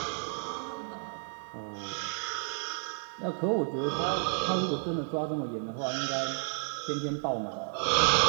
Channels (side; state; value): left; silent; 57 dB below the other